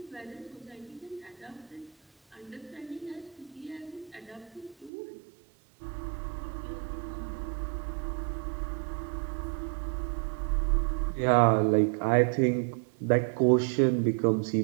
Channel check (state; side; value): drops out; left; at 4.9 s